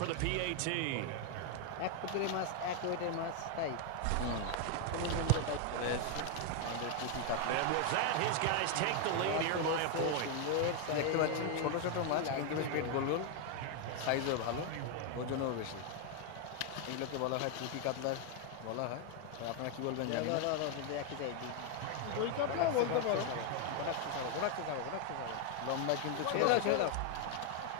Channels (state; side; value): different; both; correlation 0.01